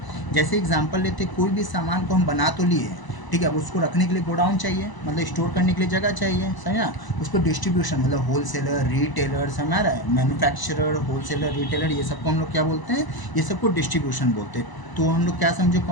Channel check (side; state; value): right; late; 1.0 ms